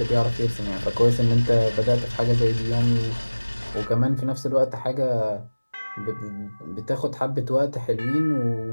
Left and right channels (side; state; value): both; inverted; correlation -1.00